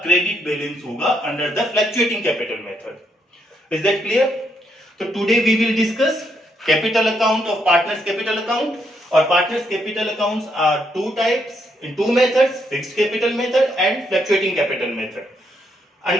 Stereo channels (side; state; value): both; normal; correlation 0.76